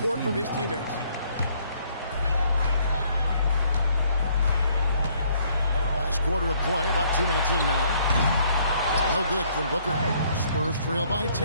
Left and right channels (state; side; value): inverted; both; correlation -0.65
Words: from his teammates. Last quarter of play, about 2 minutes in now. No good from Booker. Spurs trail by